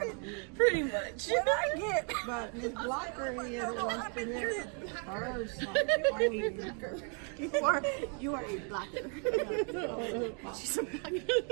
to eat it. Pretty much. What I get? But Miss Blocker here wants to hear her song. You are a blacker. She's a blacker.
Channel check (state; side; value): quieter; left; 39.6 dB